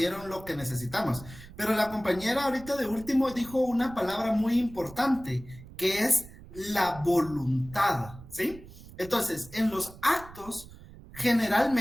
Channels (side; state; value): right; noise; rumble, 18 dB below the sound